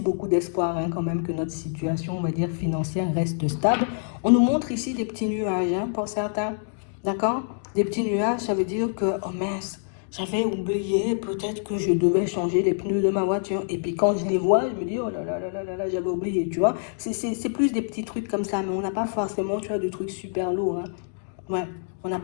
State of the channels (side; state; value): right; silent; digital silence